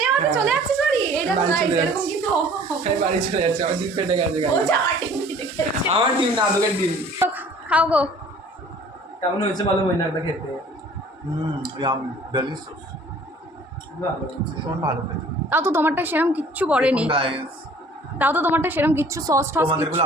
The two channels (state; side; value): normal; both; correlation 0.51